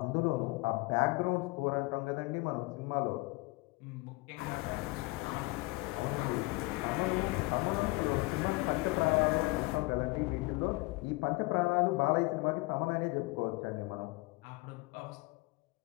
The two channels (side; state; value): right; quieter; 24.2 dB